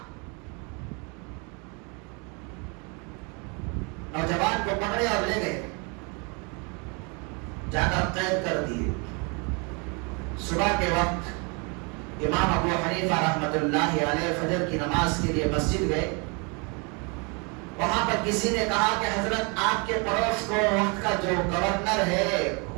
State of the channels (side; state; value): left; quieter; 32.3 dB